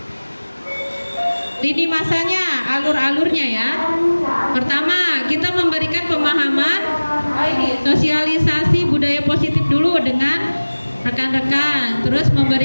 Lini masanya, alur-alurnya ya. Pertama, kita memberikan pemahaman, sosialisasi budaya positif dulu dengan rekan-rekan. Terus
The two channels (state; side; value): inverted; both; correlation -1.00